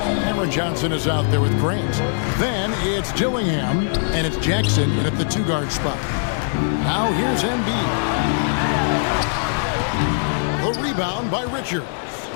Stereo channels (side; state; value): right; silent; digital silence